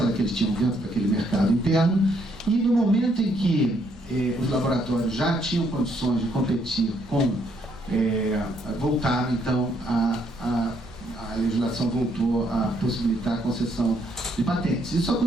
que eles tinham dentro daquele mercado interno, e no momento em que os laboratórios já tinham condições de competir voltaram então a legislação voltou a possibilitar a concessão de patentes. Isso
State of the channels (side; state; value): both; normal; correlation 0.71